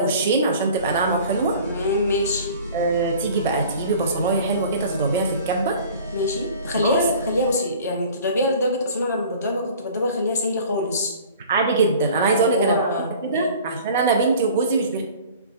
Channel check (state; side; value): inverted; both; correlation -0.46